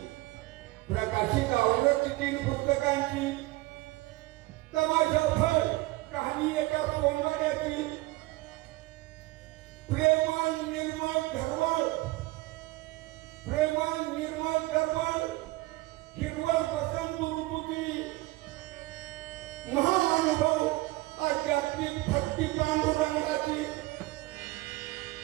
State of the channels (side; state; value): left; quieter; 20.0 dB